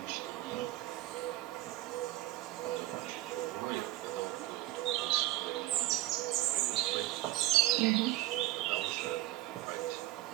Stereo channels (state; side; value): quieter; left; 16.4 dB